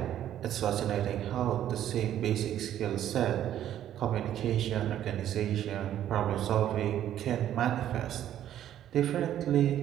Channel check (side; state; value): left; quieter; 11.3 dB